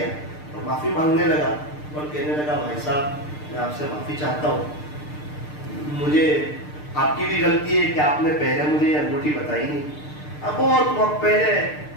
اور معافی مانگنے لگا اور کہنے لگا بھائی صاحب میں آپ سے معافی چاہتا ہوں, مجھے آپ کی بھی غلطی ہے کہ آپ نے پہلے مجھے یہ انگوٹھی بتائی نہیں. اب بہت وقت پہلے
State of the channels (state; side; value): late; right; 6.7 ms